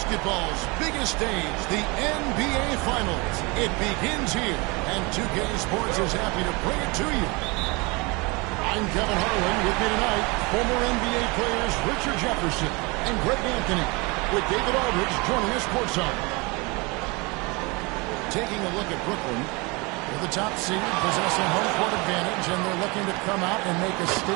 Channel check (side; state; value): left; quieter; 27.1 dB